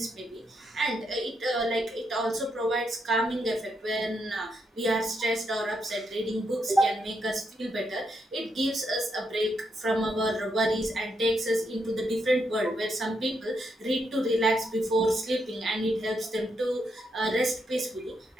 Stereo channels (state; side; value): normal; both; correlation 0.80